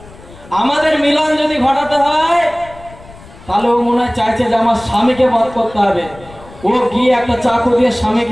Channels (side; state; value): left; noise; rumble, 20 dB below the sound